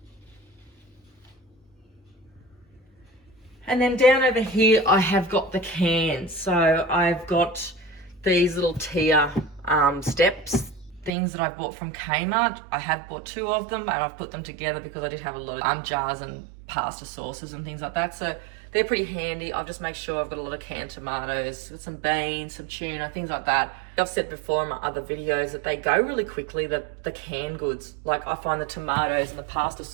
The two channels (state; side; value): drops out; left; at 11.1 s